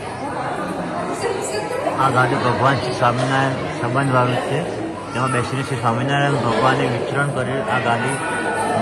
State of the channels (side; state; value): both; identical; correlation 1.00